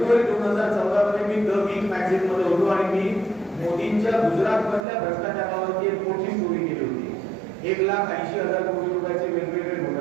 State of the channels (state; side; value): drops out; left; at 4.9 s